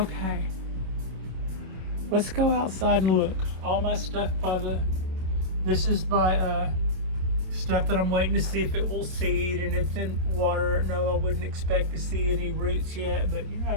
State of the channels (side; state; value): left; late; 27 ms